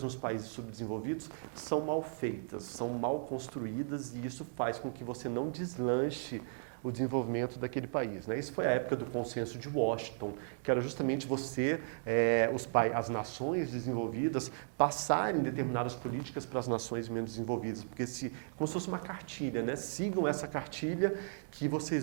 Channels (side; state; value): left; silent; digital silence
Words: nos países subdesenvolvidos são mal feitas, são mal construídas, e isso faz com que você não deslanche o desenvolvimento daquele país. Né? Isso foi a época do consenso de Washington, que era justamente as nações desenvolvidas passarem determinadas políticas para as nações menos desenvolvidas, porque como se fosse uma cartilha, né? Sigam essa cartilha que